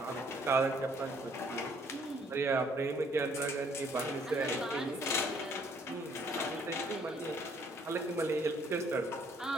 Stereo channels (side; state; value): both; normal; correlation 0.64